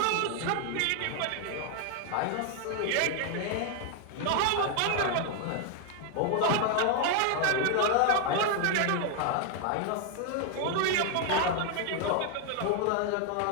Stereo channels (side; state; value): both; different; correlation 0.01